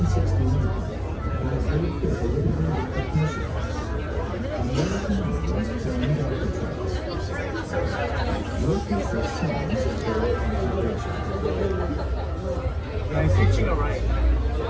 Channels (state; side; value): identical; both; correlation 1.00